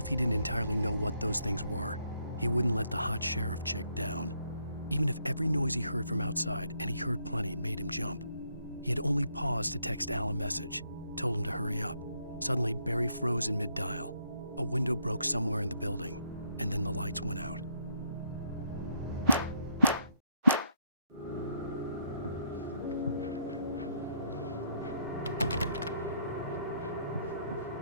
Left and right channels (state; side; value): inverted; both; correlation -0.74